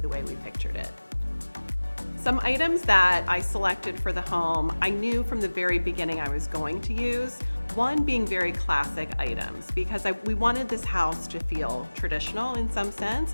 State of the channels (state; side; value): inverted; both; correlation -1.00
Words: way we pictured it. Some items that I selected for the home, I knew from the very beginning I was going to use. One being very classic items, because we wanted this house to feel traditional in some sense,